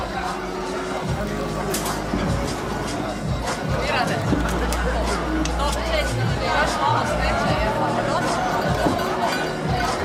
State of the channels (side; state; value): both; identical; correlation 1.00